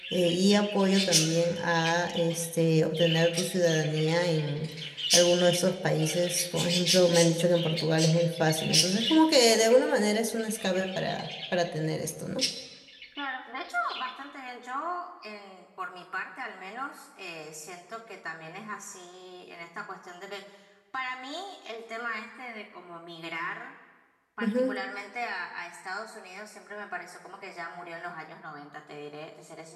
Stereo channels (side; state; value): both; identical; correlation 1.00